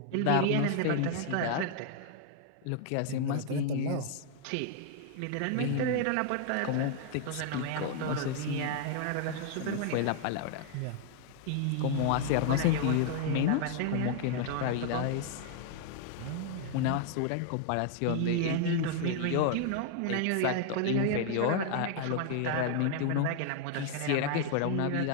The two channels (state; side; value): different; both; correlation 0.00